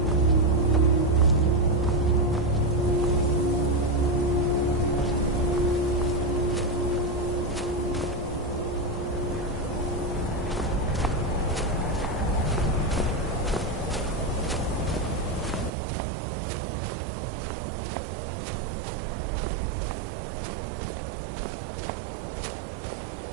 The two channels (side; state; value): left; drops out; at 15.7 s